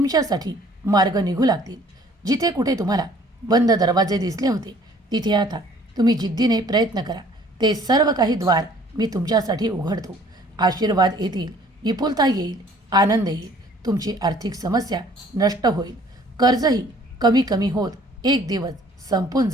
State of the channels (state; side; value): normal; both; correlation 0.55